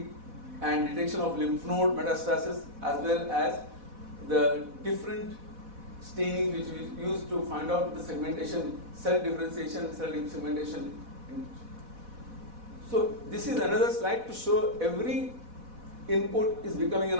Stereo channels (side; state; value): left; late; 4.1 ms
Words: and detection of lymph node metastasis, as well as the different staining which we use to find out the segmentation, cell differentiation, cell segmentation. So this is another slide to show every input is becoming an